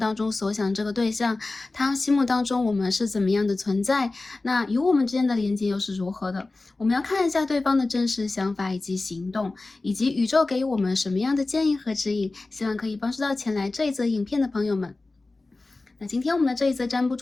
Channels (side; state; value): right; quieter; 3.3 dB